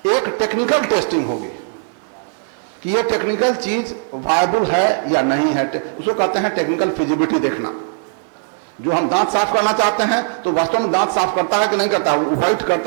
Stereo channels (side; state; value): left; silent; digital silence